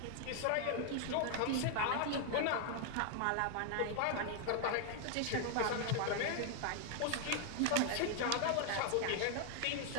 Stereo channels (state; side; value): different; both; correlation 0.00